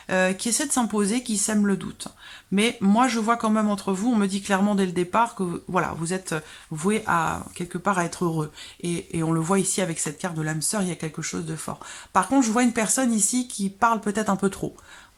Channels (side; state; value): both; identical; correlation 1.00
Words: qui essaie de s'imposer, qui sème le doute. Mais moi, je vois quand même entre vous, on me dit clairement dès le départ que voilà, vous êtes voué à quelque part à être heureux. Et on le voit ici avec cette carte de l'âme sœur, il y a quelque chose de fort. Par contre, je vois une personne ici qui parle peut-être un peu trop.